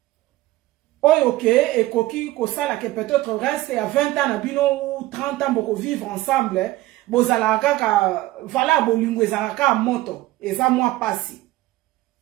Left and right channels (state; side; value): quieter; left; 17.1 dB